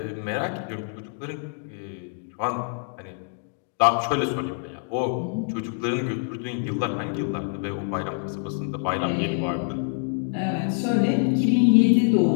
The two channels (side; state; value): right; silent; 58 dB below the other